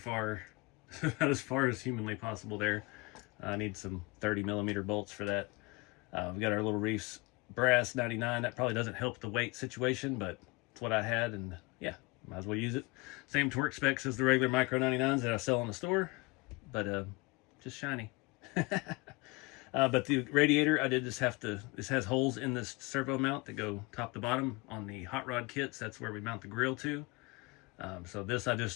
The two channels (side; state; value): right; quieter; 25.8 dB